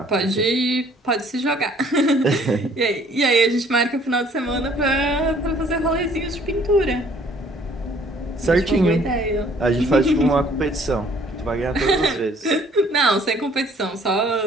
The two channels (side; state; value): both; normal; correlation 0.58